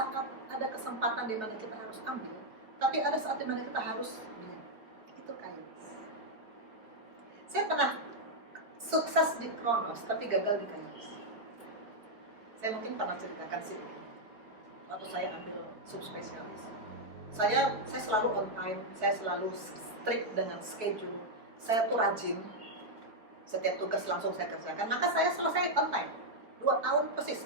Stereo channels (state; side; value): late; left; 4.6 ms